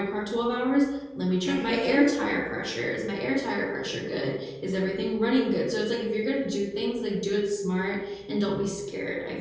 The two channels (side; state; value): both; identical; correlation 1.00